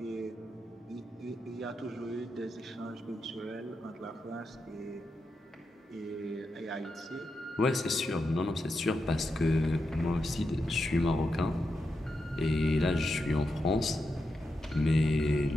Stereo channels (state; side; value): normal; both; correlation 0.87